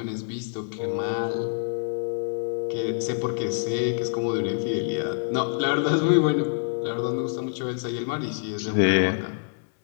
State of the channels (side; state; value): right; silent; digital silence